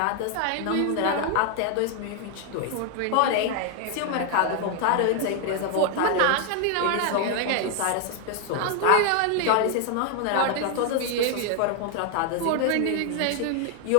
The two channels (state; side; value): different; both; correlation 0.00